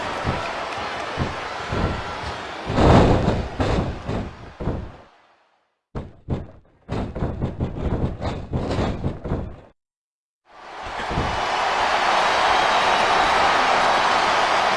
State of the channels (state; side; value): identical; both; correlation 1.00